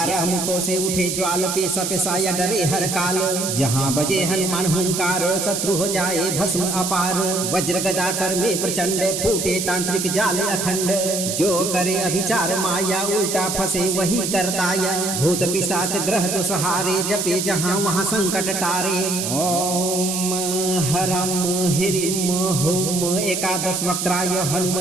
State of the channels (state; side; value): noise; right; hiss, 2 dB below the sound